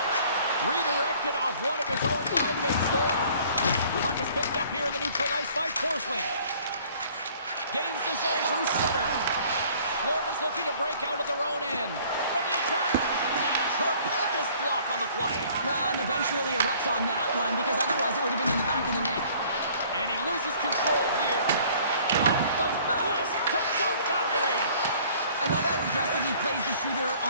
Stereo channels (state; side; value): inverted; both; correlation -0.55